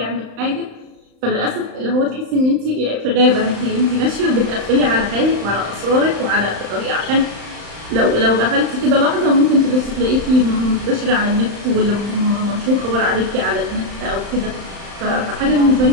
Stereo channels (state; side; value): late; left; 35 ms